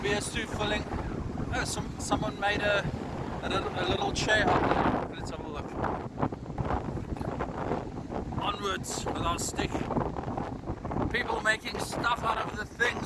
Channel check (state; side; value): identical; both; correlation 1.00